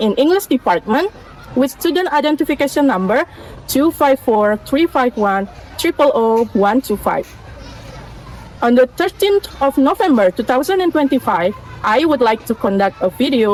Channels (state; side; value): identical; both; correlation 1.00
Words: English Department with student identification number 2543510000125. On the 13th of November 2025, I would like to conduct a